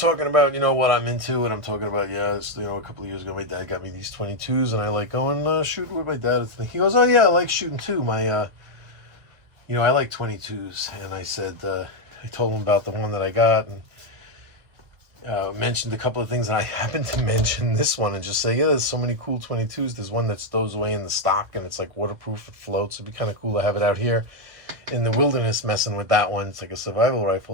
about what I'm into, and I'm talking about a couple of years ago my dad got me these 22s, and I like going shooting with my dad. He goes, oh yeah, I like shooting too. I like 22s. And I said, I told him about the one that I got, and mentioned a couple of things, and I happened to mention this one and just say, there's so many cool 22s. There's one that stows away in the stock, and it's like waterproof, it floats. It'd be kind of cool to have it out here in the wilderness messing with that one. It's like a survival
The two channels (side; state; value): left; late; 1.9 ms